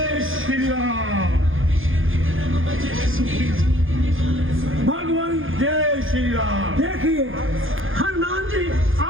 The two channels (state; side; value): late; left; 0.59 ms